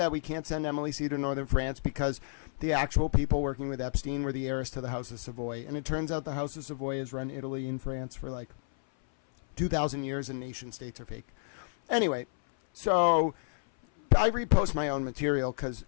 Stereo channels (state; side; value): silent; right; 57 dB below the other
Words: we can't send Emily C. to Northern France because the actual people working with Epstein were the heiress to the House of Savoy. And it turns out the House of Savoy has run Italy and France for, like, 2,000 years, and nation states are fake. Anyway, so I repost my own material because